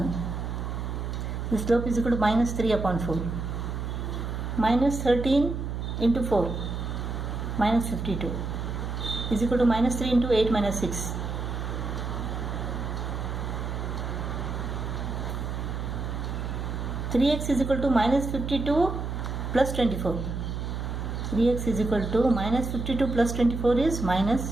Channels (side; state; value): right; noise; hum, 4 dB below the sound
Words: The slope is equal to minus 3 upon 4. Minus 13 into 4, minus 52, is equal to minus 3 into 8 minus 6. X is equal to minus 52 plus 24. 3x is equal to minus 52 plus 24 is